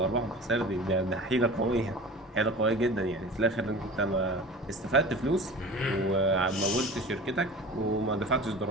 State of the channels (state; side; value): normal; both; correlation 0.38